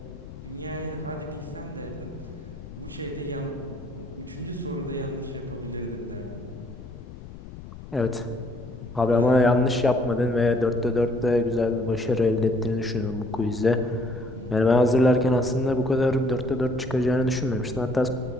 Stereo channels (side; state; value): left; noise; rumble, 14 dB below the sound